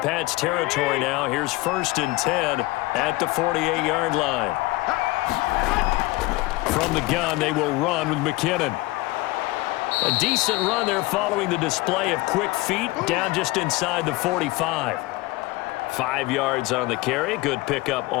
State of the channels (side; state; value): right; quieter; 20.6 dB